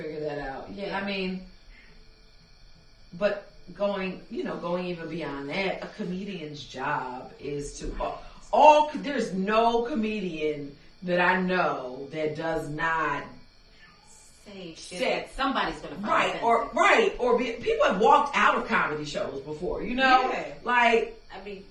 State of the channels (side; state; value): both; identical; correlation 1.00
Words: that out. Yeah, I mean, but going even beyond that, a comedian's job is to there's no comedian that I know that does not say shit. Somebody's gonna find people have walked out of comedy shows before, like, I mean,